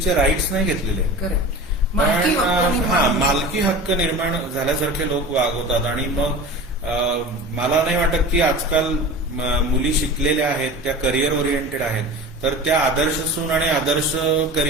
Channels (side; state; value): both; normal; correlation 0.34